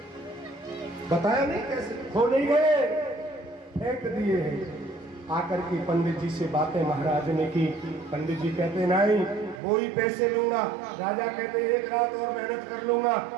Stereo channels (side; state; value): left; drops out; at 9.6 s